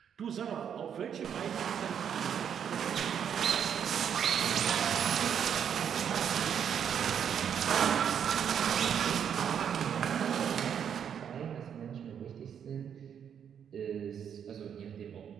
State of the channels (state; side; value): quieter; left; 8.3 dB